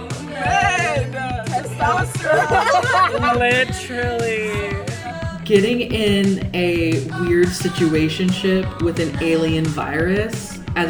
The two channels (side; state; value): both; identical; correlation 1.00